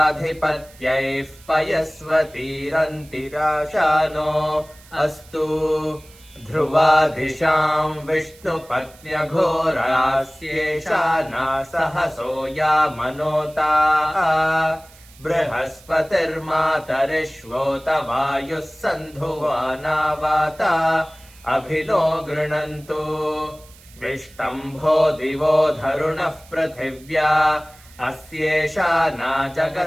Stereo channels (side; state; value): right; noise; hiss, 24 dB below the sound